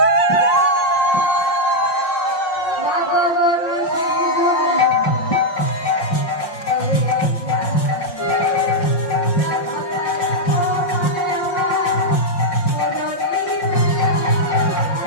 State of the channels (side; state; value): right; late; 5.6 ms